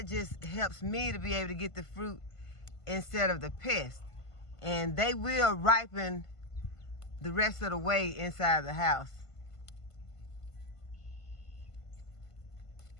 just helps me to be able to get the fruit instead of the pest. And they will ripen the rest of the way inside the house.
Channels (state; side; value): late; right; 1.5 ms